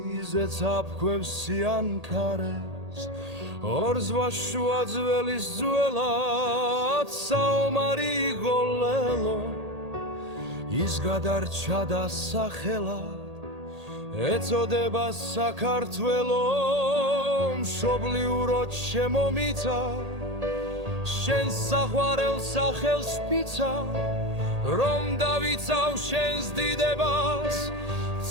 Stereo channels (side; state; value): left; late; 1.8 ms